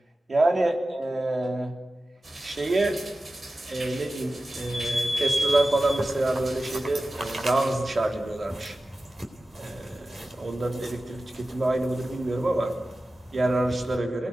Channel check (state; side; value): normal; both; correlation 0.95